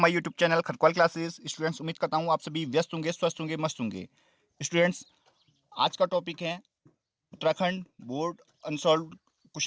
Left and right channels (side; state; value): both; identical; correlation 1.00